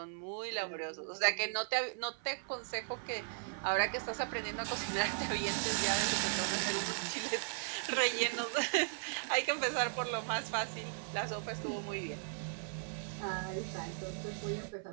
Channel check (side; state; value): left; silent; 53 dB below the other